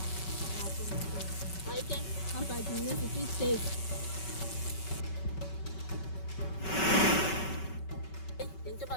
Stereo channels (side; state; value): right; late; 5.3 ms